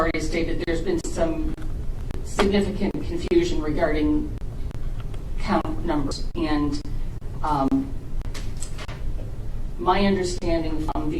stated, there's been some significant confusion regarding count numbers, and my understanding from the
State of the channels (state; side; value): identical; both; correlation 1.00